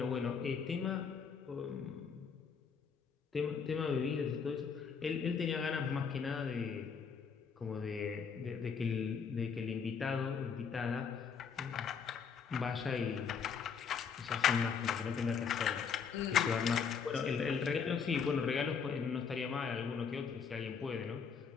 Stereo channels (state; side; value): quieter; right; 6.3 dB